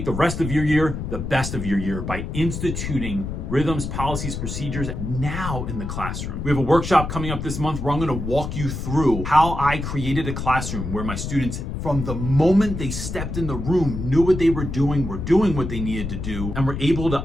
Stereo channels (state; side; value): noise; left; rumble, 5 dB below the sound